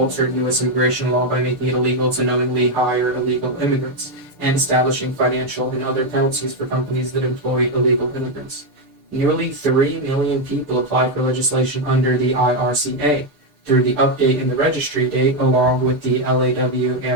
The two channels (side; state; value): left; late; 6.8 ms